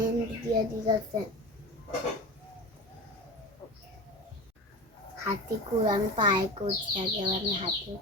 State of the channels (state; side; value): normal; both; correlation 0.29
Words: দিয়ে দিয়েছে। হাতে করে আমি পায়ে করছি, আগে আমি হাতে